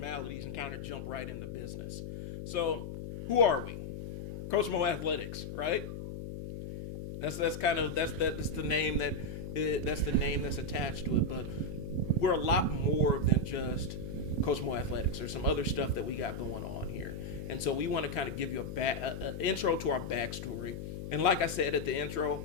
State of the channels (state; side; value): noise; left; hum, 7 dB below the sound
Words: and kind of jump right into business. So who are we? Coach Mo Athletics, right? That's the name that's attached to it. But we're a lot more than just Coach Mo Athletics. There's some other stuff that we got going on here, and so we want to kind of give you a intro to our backstory. And like I said at the intro,